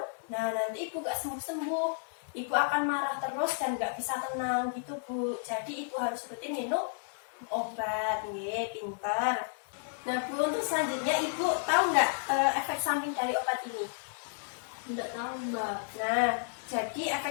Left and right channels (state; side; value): silent; right; digital silence